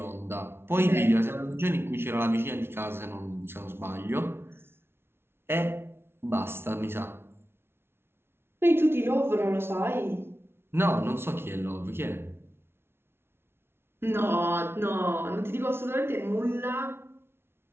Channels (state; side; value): late; left; 0.12 ms